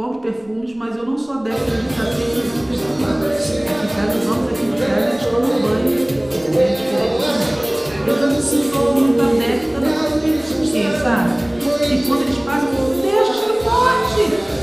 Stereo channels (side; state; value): left; noise; rumble, 29 dB below the sound